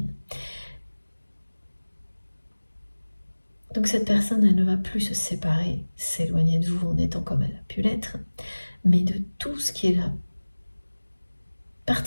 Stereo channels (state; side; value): inverted; both; correlation -1.00